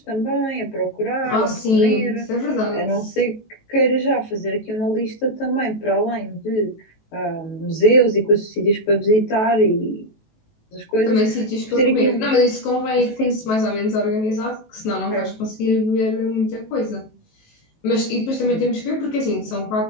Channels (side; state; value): right; late; 18 ms